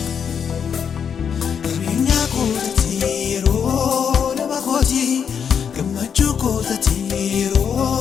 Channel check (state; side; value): quieter; right; 7.3 dB